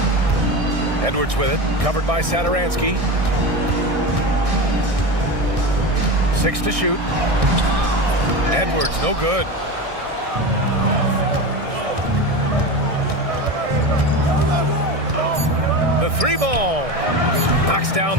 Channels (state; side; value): late; left; 1.6 ms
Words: Edwards with it, covered by Satoransky. 6 to shoot. Edwards, no good. The 3-ball. Knocks down